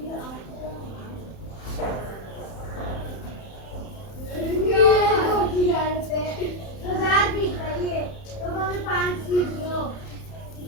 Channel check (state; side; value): late; right; 31 ms